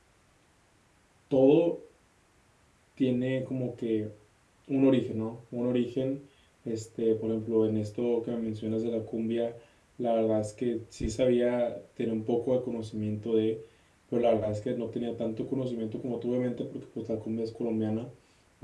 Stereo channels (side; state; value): both; identical; correlation 1.00